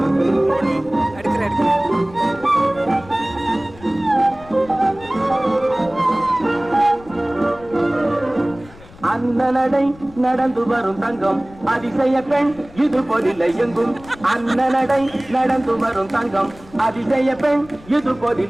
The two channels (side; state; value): left; noise; rumble, 21 dB below the sound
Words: அந்த நடை நடந்து வரும் தங்கம் அதிசய பெண் இது போதில்லை எங்கும் அந்த நடை நடந்து வரும் தங்கம் அதிசய பெண் இது